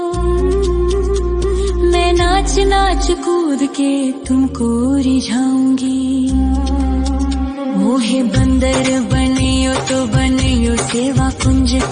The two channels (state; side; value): identical; both; correlation 1.00